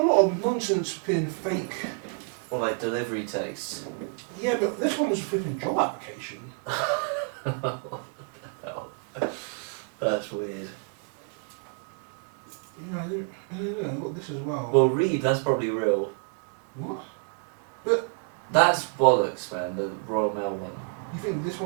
lot of nonsense being fake. Or like delivery texts. Yeah, but this one was a flipping job application. That's weird. Yeah, I don't know. I've got this as well. Well, read. That's probably real. What? That's bollocks, man. The Royal Mail one. You think this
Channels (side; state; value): left; quieter; 39.8 dB